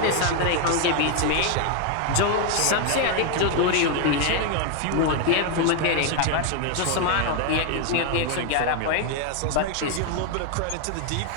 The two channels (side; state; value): both; different; correlation 0.01